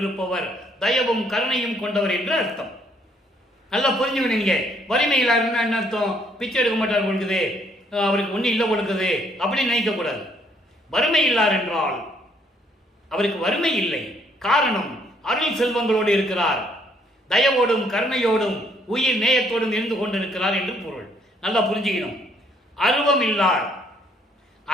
தயவும் கருணையும் கொண்டவர் என்று அர்த்தம். நல்லா புரிஞ்சுக்கணும் நீங்க. வறுமை இல்லாருன்னா என்ன அர்த்தம்? பிச்சை எடுக்க மாட்டார் கொடுக்குது, அவருக்கு ஒன்றும் இல்லை கொடுக்குது அப்படின்னு நினைக்க கூடாது. வறுமை இல்லார் என்றால் அவருக்கு வறுமை இல்லை, காரணம் அருள் செல்வங்களோடு இருக்கிறார், தயவோடும் கருணையோடும் உயிர் நேயத்தோடும் இருந்து கொண்டிருக்கிறார் என்று பொருள். நல்லா புரிஞ்சுக்கணும். அருவம் இல்லார்,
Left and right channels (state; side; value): normal; both; correlation 0.67